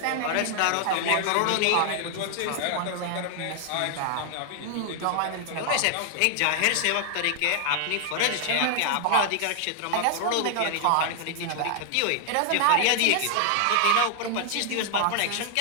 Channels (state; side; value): different; both; correlation 0.00